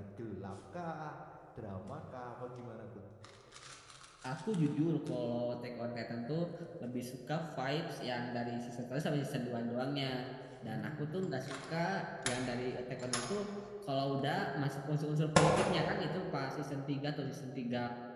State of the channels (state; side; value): identical; both; correlation 1.00